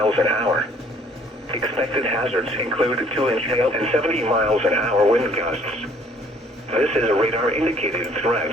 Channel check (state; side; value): normal; both; correlation 0.59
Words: an hour. Expected hazards include 2-inch hail and 70 miles an hour wind gusts. This is a radar-indicated